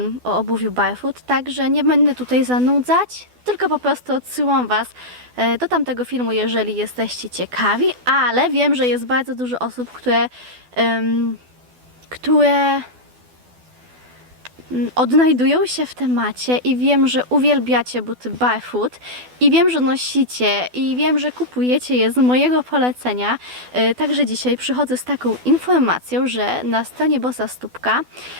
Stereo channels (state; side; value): late; left; 12 ms